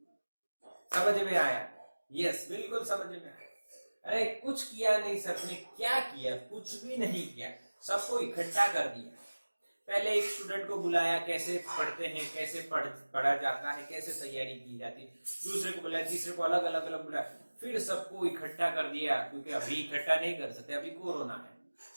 समझ में आया? यस, बिल्कुल समझ में आया। अरे कुछ किया नहीं सर ने, क्या किया? कुछ भी नहीं किया, सबको इकट्ठा कर दिया। पहले एक स्टूडेंट को बुलाया, कैसे पढ़ते हैं, कैसे पढ़ा जाता है, कैसे तैयारी की जाती है, दूसरे को बुलाया, तीसरे को अलग अलग बुलाया, फिर सबको इकट्ठा कर दिया, क्योंकि अभी इकट्ठा नहीं कर सकते, अभी कोरोना है।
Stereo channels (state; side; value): inverted; both; correlation -1.00